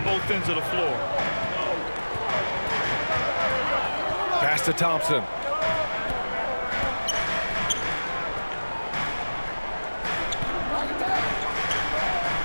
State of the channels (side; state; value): both; inverted; correlation -1.00